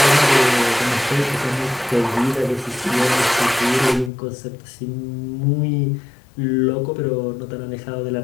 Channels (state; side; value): drops out; right; at 4.1 s